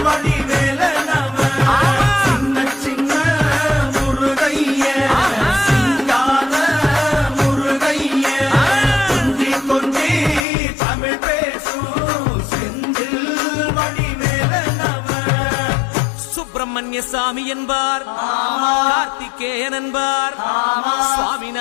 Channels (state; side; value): drops out; right; at 10.5 s